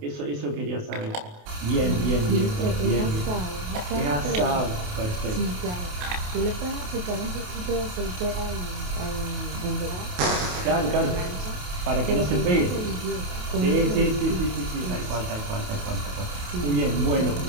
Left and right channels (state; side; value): late; left; 28 ms